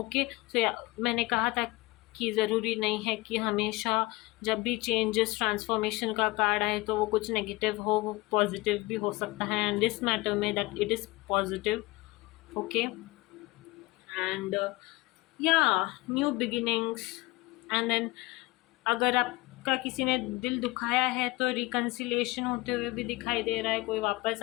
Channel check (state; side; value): quieter; right; 21.3 dB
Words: सो मैंने कहा था कि ज़रूरी नहीं है कि हमेशा जब भी चेंजेस, ट्रांसफॉर्मेशन का कार्ड आए तो वो कुछ नेगेटिव हो, वो पॉजिटिव भी हो सकता है। एंड दिस मैटर में that it is positive. Okay, and या न्यू बिगिनिंग्स। एंड देन अगर आपका किसी ने दिल दुखाया है तो रिकन्सिलेशन होते हुए भी दिखाई दे रहा है, कोई वापस